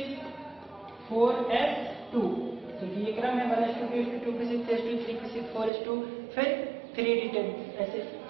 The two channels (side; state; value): left; drops out; at 5.7 s